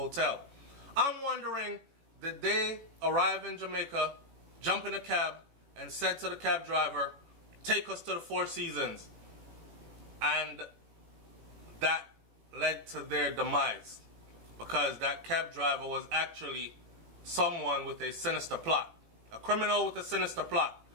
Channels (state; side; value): late; left; 18 ms